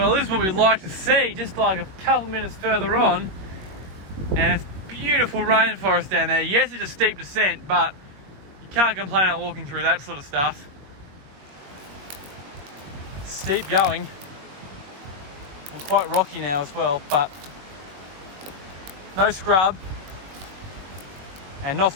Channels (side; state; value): left; late; 21 ms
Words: this is what we'd like to see, just like a couple minutes further on. And it's beautiful rainforest down there. Yes, it's a steep descent, but you can't complain about walking through that sort of stuff. It's steep going. And quite rocky now as well, but no scrub. And not